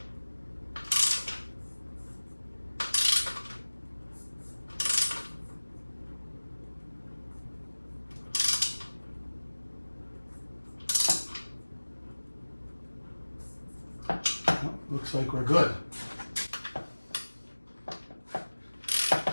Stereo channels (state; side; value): inverted; both; correlation -1.00